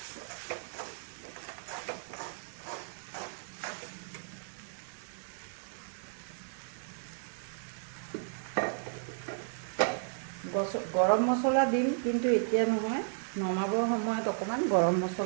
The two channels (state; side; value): silent; left; 55 dB below the other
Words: গৰম মছলা দিম, কিন্তু এতিয়া নহয়, নমাবৰ সময়ত অকণমান গৰম